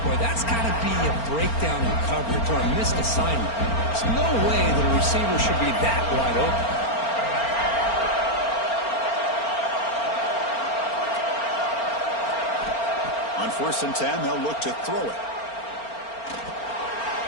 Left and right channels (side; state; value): right; late; 4.4 ms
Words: Boy, that's got to be a breakdown in coverage or a missed assignment. There's no way that a receiver should be that wide open. On first and 10, they'll look to throw it.